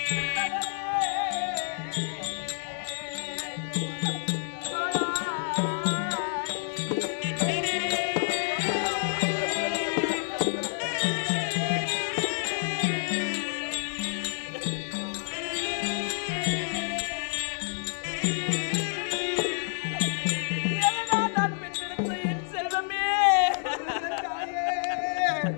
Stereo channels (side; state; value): right; silent; digital silence